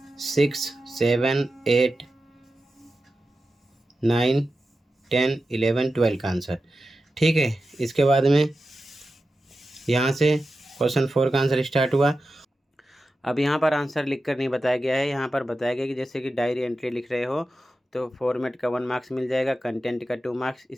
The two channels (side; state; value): both; normal; correlation 0.92